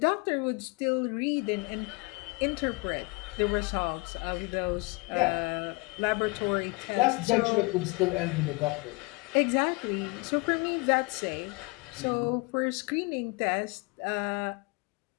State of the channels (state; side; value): quieter; right; 27.0 dB